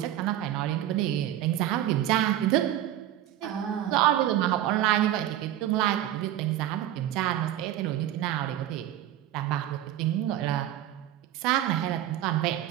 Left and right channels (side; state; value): left; quieter; 12.6 dB